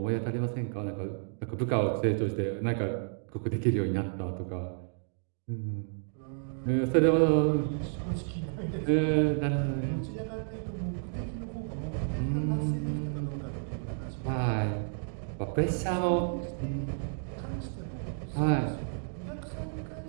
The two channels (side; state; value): left; silent; digital silence